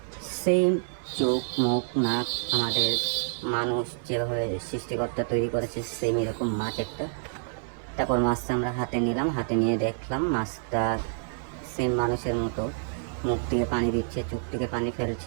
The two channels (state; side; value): silent; left; digital silence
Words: সেম চোখ, মুখ, নাক আমাদের মানুষ যেভাবে সৃষ্টিকর্তা তৈরি করেছে সেম এরকম মাছ একটা। তারপর মাছটা আমরা হাতে নিলাম, হাতে নিয়ে দেখলাম মাছটা সেম মানুষের মতো, মুখ থেকে পানি দিচ্ছে, চোখ থেকে পানি